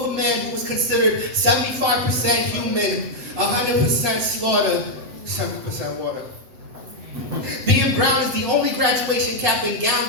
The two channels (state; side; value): late; left; 8.0 ms